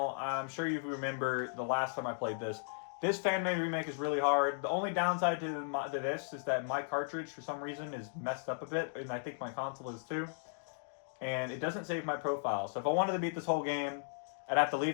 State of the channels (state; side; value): silent; right; digital silence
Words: I'm sure you remember the last time I played this. This fan-made remake is really hard. The only downside to this is that my cartridge, for some reason, is messed up a bit, and I think my console is too. And it doesn't save my profile. So if I wanted to beat this whole game, I'd have to